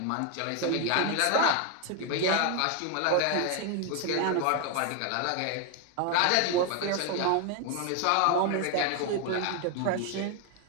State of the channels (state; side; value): different; both; correlation 0.01